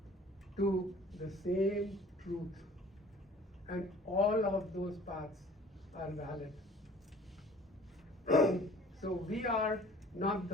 to the same truth, and all of those paths are valid. So we are not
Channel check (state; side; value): normal; both; correlation 0.50